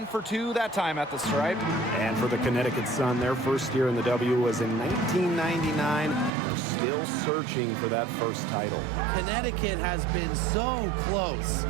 for 2 that time at the stripe. And for the Connecticut Sun, their first year in the W was in 1999. They're still searching for that first title. Connecticut has been so close,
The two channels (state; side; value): drops out; left; at 6.3 s